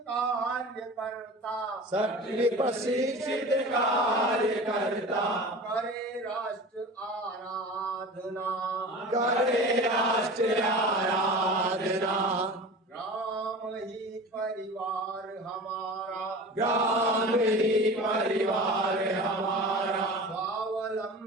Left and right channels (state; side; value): normal; both; correlation 0.36